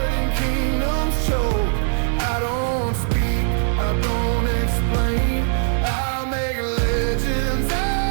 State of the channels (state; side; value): silent; left; digital silence